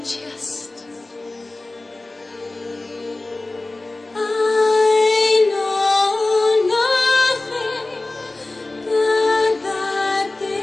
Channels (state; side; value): quieter; right; 3.0 dB